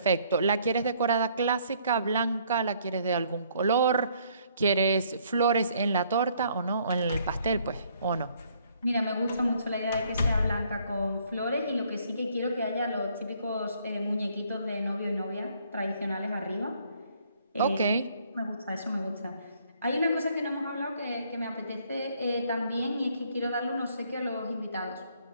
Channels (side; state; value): both; inverted; correlation -0.65